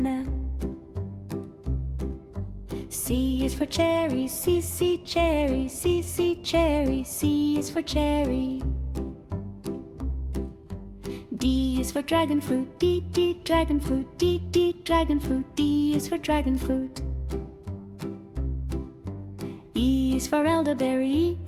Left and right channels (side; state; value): both; identical; correlation 1.00